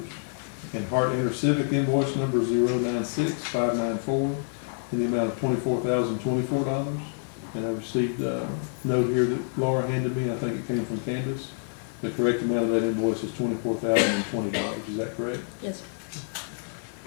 And Hardin Civic invoice number 096594 in the amount of $24,024. And I received a note here that Laura handed me, I think it came from Candace. The correct amount of that invoice is $24,020, is that correct? Yes, sir.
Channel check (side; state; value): right; silent; digital silence